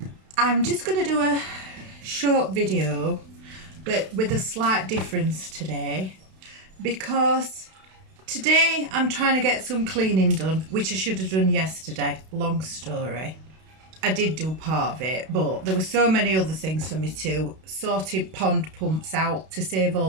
I'm just going to do a short video, but with a slight difference today, because today I'm trying to get some cleaning done, which I should have done yesterday. Long story. I did do part of it, but there were so many other things for me to sorted pond pumps out to save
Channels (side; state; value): left; late; 32 ms